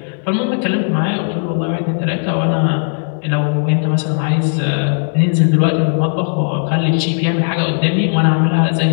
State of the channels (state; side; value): silent; right; digital silence